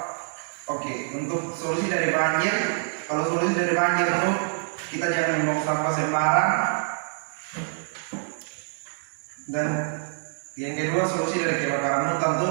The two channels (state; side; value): silent; left; digital silence